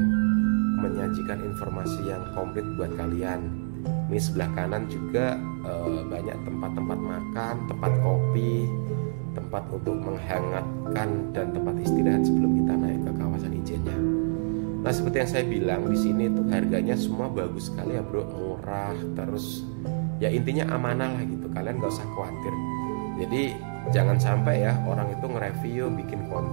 menyajikan informasi yang komplit buat kalian. Ini sebelah kanan juga banyak tempat-tempat makan, tempat kopi, tempat untuk menghangatkan, dan tempat istirahat sebelum kita naik ke kawasan Ijennya. Nah seperti yang saya bilang, di sini tuh harganya semua bagus sekali ya bro, murah, terus ya intinya amanah lah gitu, kalian gak usah khawatir. Jadi jangan sampai ya orang itu nge-review, bikin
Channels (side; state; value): left; silent; 60 dB below the other